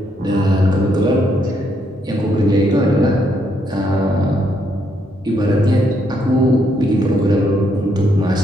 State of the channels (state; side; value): normal; both; correlation 0.74